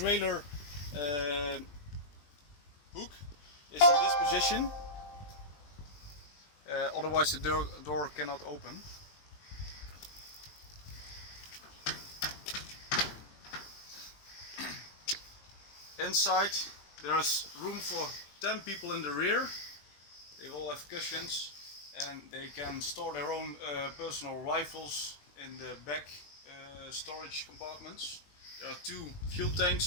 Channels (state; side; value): late; right; 20 ms